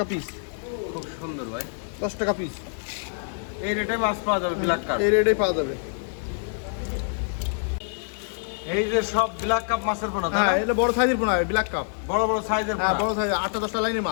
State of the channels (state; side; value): silent; right; digital silence